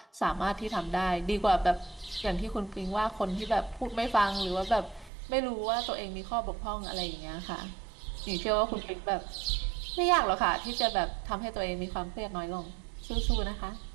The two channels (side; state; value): left; drops out; at 5.1 s